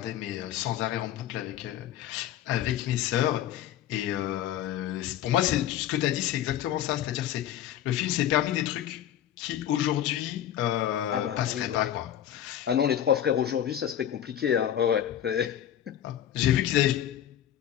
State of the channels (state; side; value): quieter; right; 11.1 dB